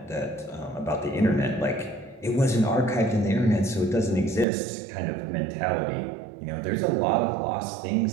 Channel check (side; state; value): left; drops out; at 4.5 s